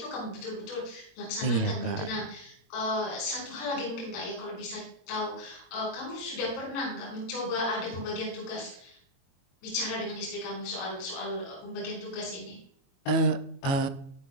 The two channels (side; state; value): right; late; 22 ms